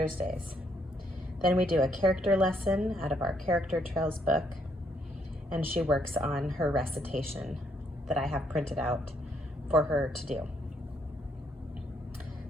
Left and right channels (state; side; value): normal; both; correlation 0.72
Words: Then we do a character lesson out of our Character Trails book, and she works on her recitation that I have printed out for her to do.